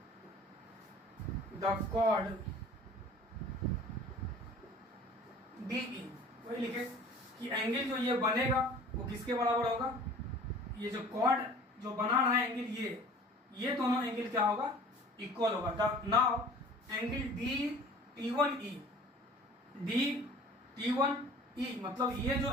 the chord DE। वही लिखे कि angle जो ये बनेगा वो किसके बराबर होगा, ये जो कॉर्ड जो बना रहा है एंगल ये दोनों एंगल क्या होगा, इक्वल होगा। नाउ एंगल D मतलब ये जो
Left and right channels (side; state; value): both; normal; correlation 0.46